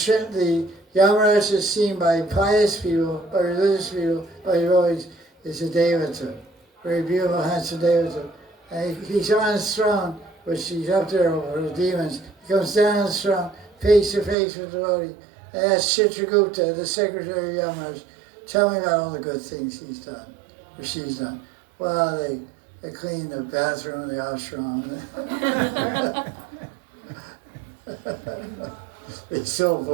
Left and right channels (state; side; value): drops out; left; at 14.4 s